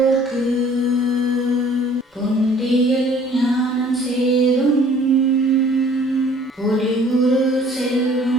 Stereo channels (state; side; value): normal; both; correlation 0.54